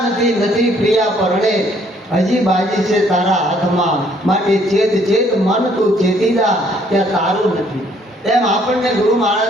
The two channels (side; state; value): both; normal; correlation 0.64